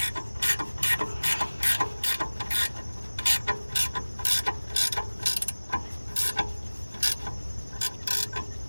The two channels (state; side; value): inverted; both; correlation -1.00